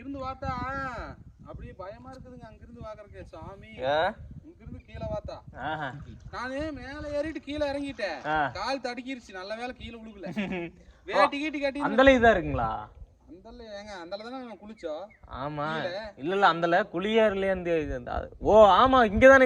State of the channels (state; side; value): identical; both; correlation 1.00